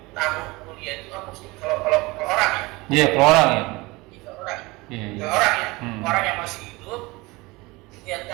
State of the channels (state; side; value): quieter; left; 22.9 dB